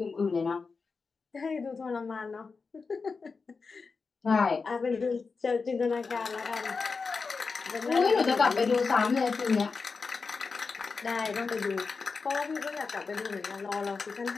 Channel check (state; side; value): quieter; right; 4.7 dB